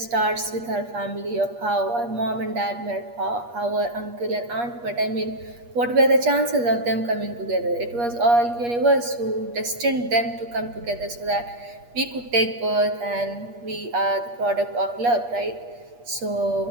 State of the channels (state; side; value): late; left; 8.4 ms